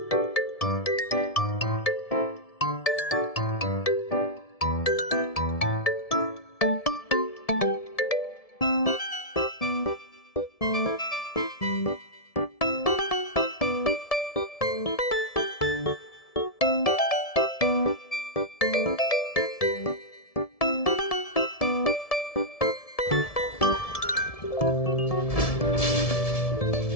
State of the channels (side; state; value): right; late; 1.7 ms